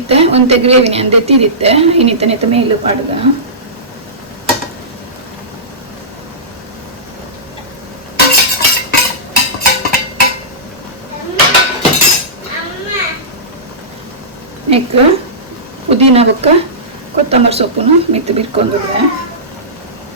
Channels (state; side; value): normal; both; correlation -0.19